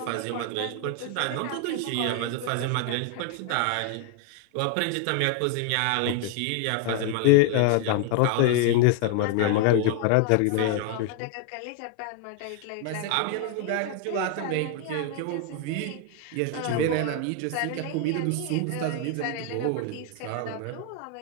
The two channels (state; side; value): different; both; correlation 0.00